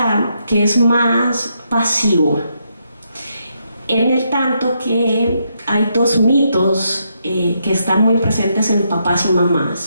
que es más pasivo. en el tanto que hay dos mitos que están muy presentes en papás y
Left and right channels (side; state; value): both; inverted; correlation -0.79